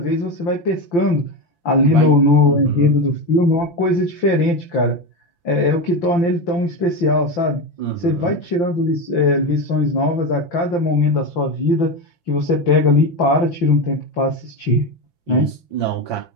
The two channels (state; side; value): late; right; 5.8 ms